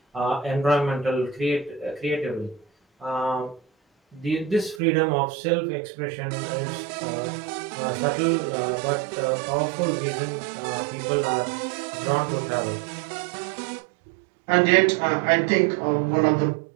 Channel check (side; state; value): left; drops out; at 4.8 s